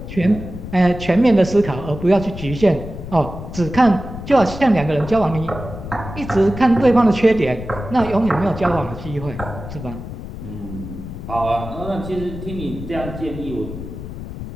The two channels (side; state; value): left; noise; rumble, 10 dB below the sound